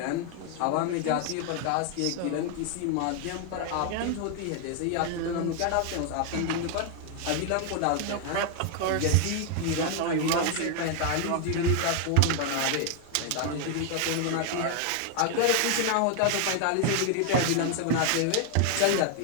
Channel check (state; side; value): different; both; correlation 0.00